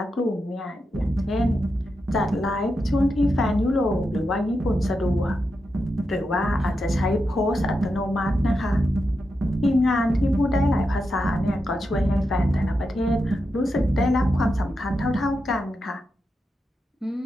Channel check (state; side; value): normal; both; correlation 0.87